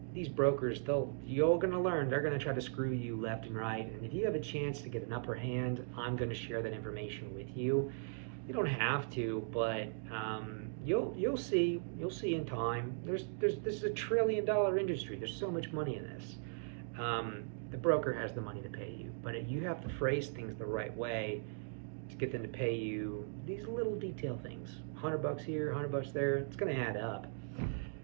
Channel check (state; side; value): silent; left; digital silence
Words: these brokers, you're going to learn, they're going to try to screw you left and right. And if you have a chance to get an upper hand, I'm going to share that information with you. You don't have to, but you'll see in time. This is a $1 trillion industry. There's so much money in this. The broker has the money to pay you, but you have to phrase things the right way to get them to pay you these little detail things. $100 here, $100 there. It's going to add up.